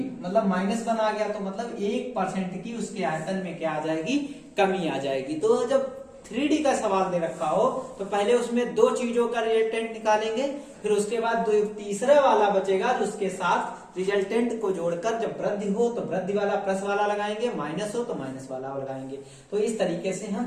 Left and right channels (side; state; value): both; identical; correlation 1.00